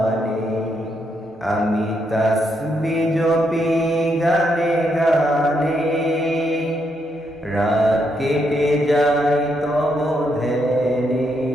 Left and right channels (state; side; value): normal; both; correlation 0.78